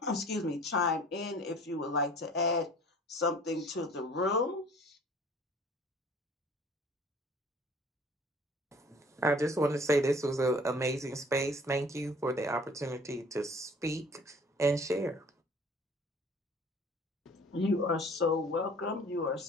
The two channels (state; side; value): normal; both; correlation 0.50